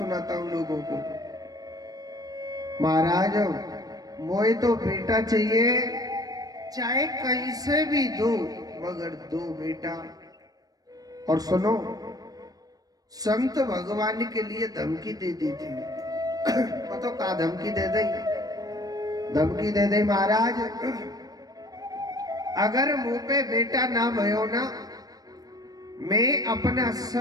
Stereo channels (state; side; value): late; left; 0.18 ms